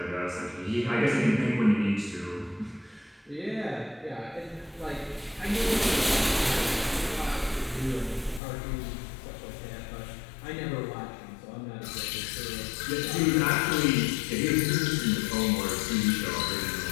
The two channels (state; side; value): drops out; right; at 8.4 s